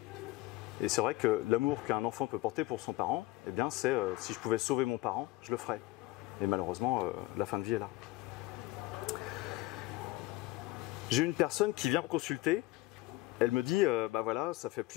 Et c'est vrai que l'amour qu'un enfant peut porter pour son parent, eh bien c'est si je pouvais sauver mon parent, je le ferais. Et malheureusement la fin de vie est là. J'ai une personne qui vient me consulter. Elle me dit, bah voilà, ça fait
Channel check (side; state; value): right; quieter; 18.9 dB